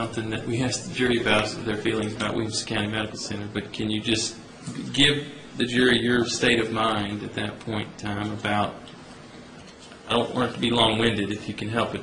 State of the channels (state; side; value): identical; both; correlation 1.00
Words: that we ask the jury about, their feelings about Williamson County Medical Center, but can you just give the jury your state of mind at that point in time about, I don't want it to be long-winded if you can help